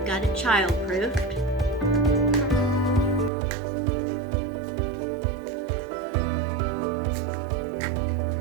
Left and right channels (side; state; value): left; drops out; at 3.3 s